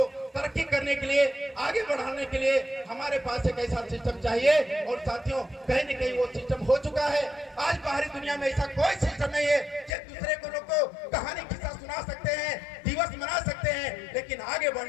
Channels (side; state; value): right; drops out; at 9.9 s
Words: तरक्की करने के लिए, आगे बढ़ाने के लिए हमारे पास एक ऐसा सिस्टम चाहिए। और साथियों, कहीं न कहीं वो सिस्टम हो चुका है। आज बाहरी दुनिया में ऐसा कोई सिस्टम नहीं है कि दूसरे को लोग को कहानी किस्सा सुना सकते हैं, दिवस मना सकते हैं, लेकिन आगे